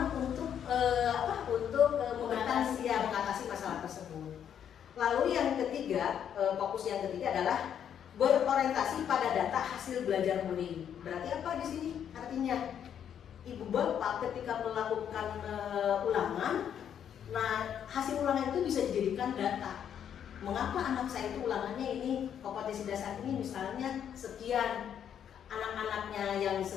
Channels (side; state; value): right; quieter; 9.0 dB